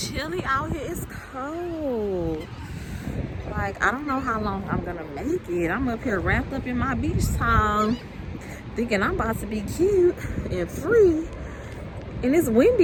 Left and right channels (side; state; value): both; identical; correlation 1.00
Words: chilly out here. It's cold. Like, I don't know how long I'm gonna make it. I'm up here wrapped up in my beach towel, thinking I'm about to be cute and free. And it's